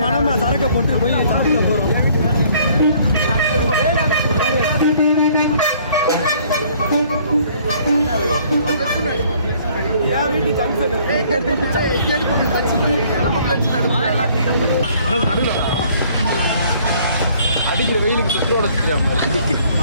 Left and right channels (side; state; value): both; inverted; correlation -0.59